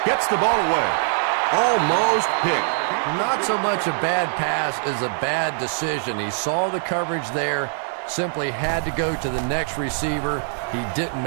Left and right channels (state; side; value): silent; left; digital silence